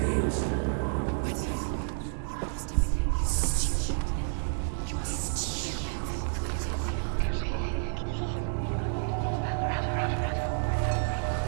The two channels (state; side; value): silent; left; digital silence